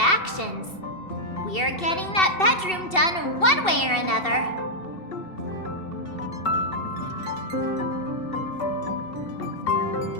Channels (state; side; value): late; right; 2.7 ms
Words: We're getting that bedroom done one way or another.